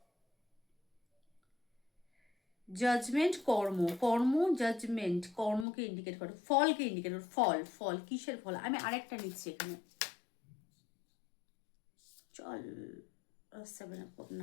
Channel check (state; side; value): drops out; right; at 5.7 s